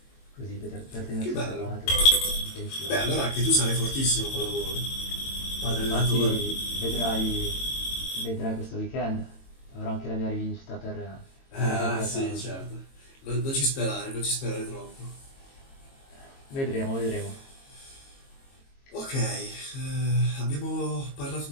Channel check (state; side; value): late; right; 22 ms